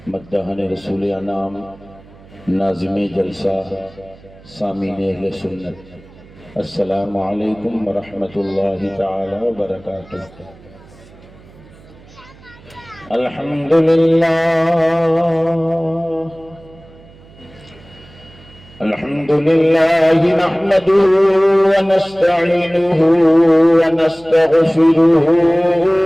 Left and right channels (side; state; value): right; noise; hum, 24 dB below the sound